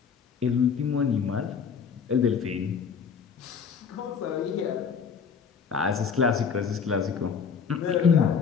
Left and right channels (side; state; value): right; quieter; 6.4 dB